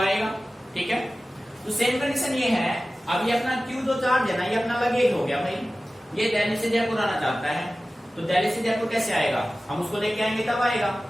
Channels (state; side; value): normal; both; correlation 0.96